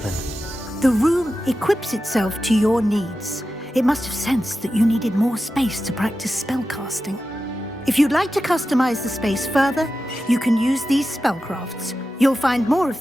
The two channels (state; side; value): normal; both; correlation 0.92